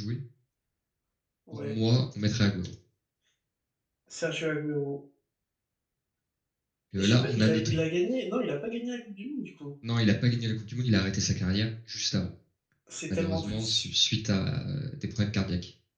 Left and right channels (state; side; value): identical; both; correlation 1.00